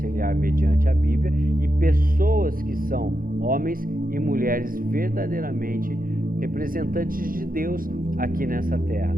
mediante a Bíblia e pessoas que são homens e mulheres verdadeiramente representantes de Deus aqui nessa terra,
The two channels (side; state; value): left; late; 0.41 ms